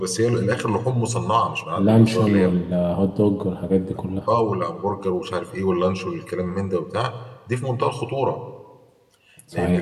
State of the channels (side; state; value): both; identical; correlation 1.00